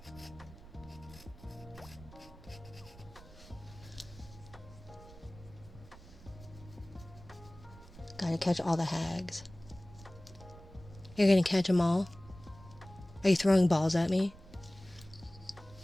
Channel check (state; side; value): noise; right; rumble, 19 dB below the sound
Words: Gotta catch all the hags. You're gonna catch them all? Are you throwing balls at me?